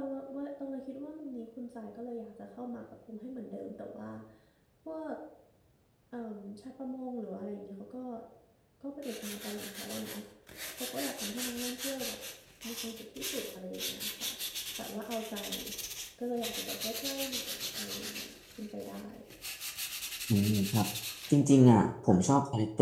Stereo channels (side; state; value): both; identical; correlation 1.00